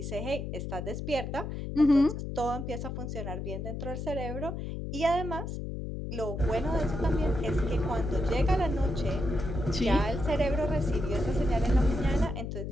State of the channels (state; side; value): noise; left; hum, 5 dB below the sound